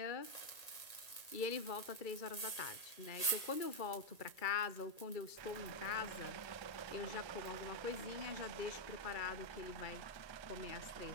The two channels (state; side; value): late; right; 1.8 ms